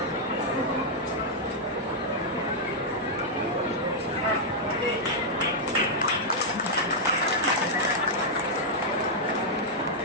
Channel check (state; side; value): normal; both; correlation -0.05